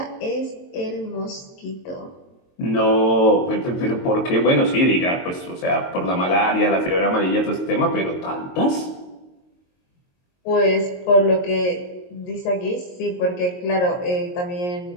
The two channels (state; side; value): late; right; 22 ms